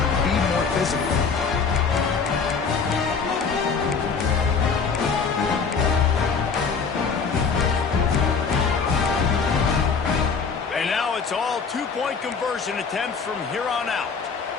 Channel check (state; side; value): quieter; right; 5.5 dB